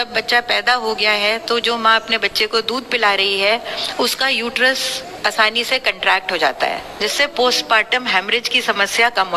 बच्चा पैदा हो गया है तो जो माँ अपने बच्चे को दूध पिला रही है उसका यूट्रस आसानी से कंट्रैक्ट हो जाता है, जिससे पोस्टपार्टम हेमरेज की समस्या कम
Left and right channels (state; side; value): identical; both; correlation 1.00